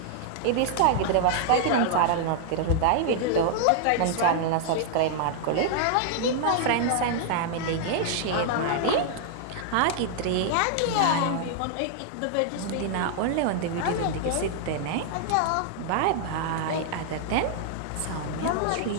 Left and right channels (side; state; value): both; different; correlation 0.00